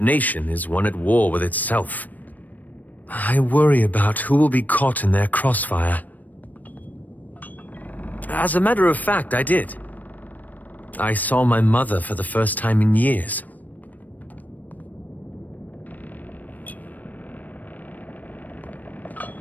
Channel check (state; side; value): late; right; 0.082 ms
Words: nation is one at war with itself. I worry about who will be caught in their crossfire. As a matter of fact, I did. I saw my mother for the first time in years.